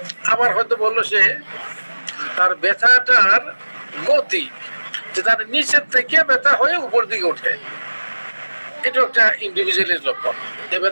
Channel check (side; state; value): both; inverted; correlation -1.00